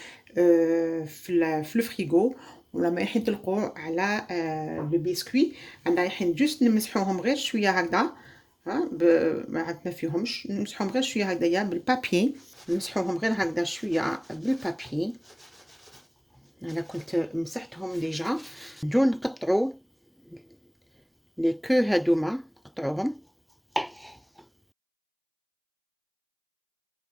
في الفريغو ولا ما رايحين يطلقوا على لو بسكوي. انا رايحين جوست نمسحوهم غير شويه هكذا. ها ما عندنا فيهمش نمسحوهم غير شويه هكذايا بالبابي. نمسحوهم غير هكذا شويه بالبابي. انا كنت مسحتهم ديجا. نجو نقطعوا لي كو هادوما نقطعوهم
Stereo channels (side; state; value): both; identical; correlation 1.00